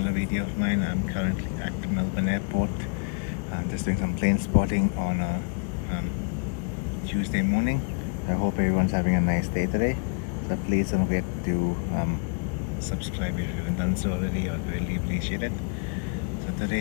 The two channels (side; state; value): right; quieter; 37.1 dB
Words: video of mine. I'm currently at Melbourne Airport, just doing some plane spotting on a Tuesday morning. I hope everyone's having a nice day today. So please don't forget to subscribe if you haven't done so already. I'd really appreciate it. So